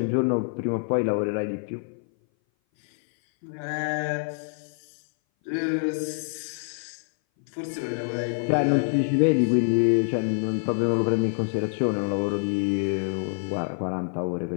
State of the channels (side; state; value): right; silent; 58 dB below the other